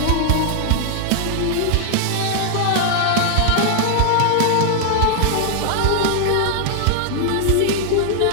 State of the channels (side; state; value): both; different; correlation -0.01